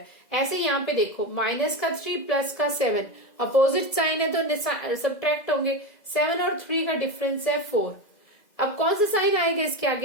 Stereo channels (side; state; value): right; late; 2.0 ms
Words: ऐसे यहाँ पे देखो माइनस का 3 प्लस का 7 अपोजिट साइन है तो सब्ट्रैक्ट होंगे, 7 और 3 का डिफरेंस है 4। अब कौन सा साइन आएगा इसके